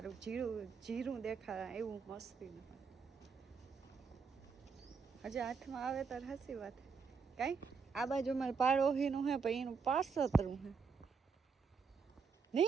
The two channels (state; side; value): quieter; left; 5.4 dB